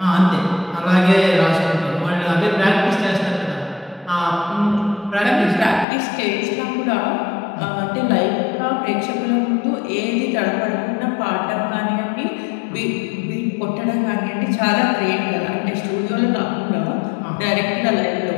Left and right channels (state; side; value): drops out; right; at 5.9 s